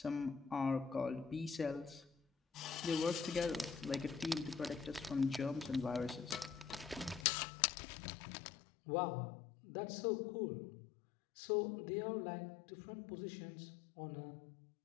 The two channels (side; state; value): right; drops out; at 7.2 s